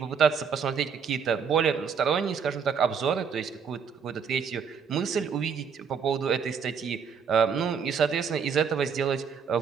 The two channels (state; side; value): quieter; left; 6.5 dB